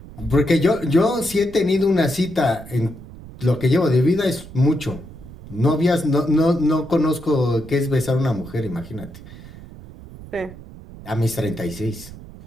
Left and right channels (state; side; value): noise; right; rumble, 16 dB below the sound